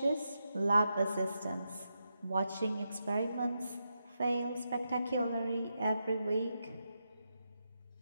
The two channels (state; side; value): inverted; both; correlation -0.86